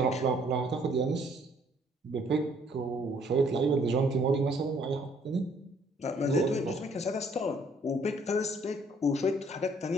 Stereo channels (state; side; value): normal; both; correlation 0.63